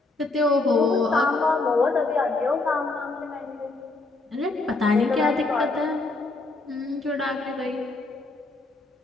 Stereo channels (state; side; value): quieter; right; 3.3 dB